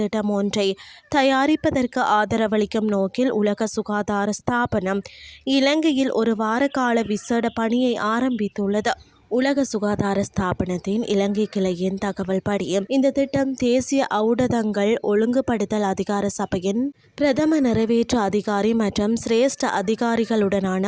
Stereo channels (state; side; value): identical; both; correlation 1.00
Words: ஒன்றை தயாரிப்பதற்கு ஆதரவளிக்கும் நோக்கில் உலக சுகாதார ஸ்தாபனம் இலங்கையில் ஒரு வார கால விசேட பணியை ஆரம்பித்துள்ளது. உலக சுகாதார ஸ்தாபனத்தின் இலங்கை கிளையின் தகவல் படி இந்த திட்டம் தேசிய ஊடகங்கள் ஒழுங்குபடுத்தல் அதிகார சபையின் பிரதம நிறைவேற்று அதிகாரி மற்றும் சிரேஷ்ட